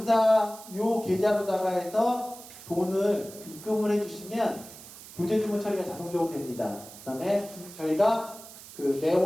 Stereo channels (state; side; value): noise; right; hiss, 17 dB below the sound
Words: 요 계좌로다가 해서 돈을 입금을 해주시면 교재 주문 처리가 자동적으로 됩니다. 그 다음에 저희가 그